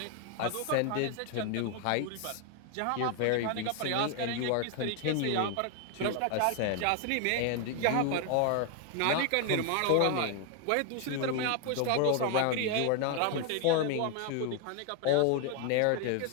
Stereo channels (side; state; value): both; different; correlation 0.00